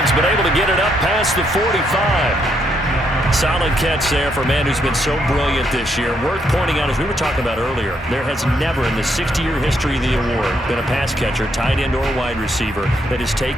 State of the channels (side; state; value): both; normal; correlation 0.75